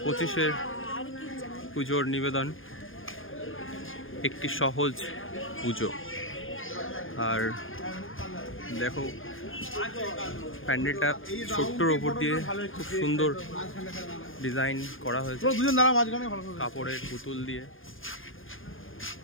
পুজোর নিবেদন একটি সহজ পুজো। আর দেখো প্যান্ডেলটা ছোট্টর ওপর দিয়ে খুব সুন্দর ডিজাইন করা হয়েছে, কাপড়ের পুতুল দিয়ে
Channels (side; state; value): right; late; 0.59 ms